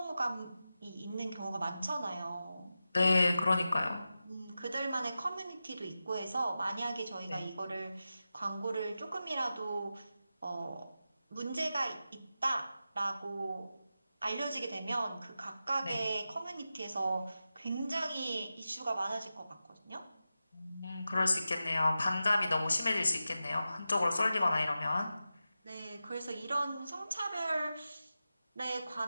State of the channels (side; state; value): both; inverted; correlation -0.92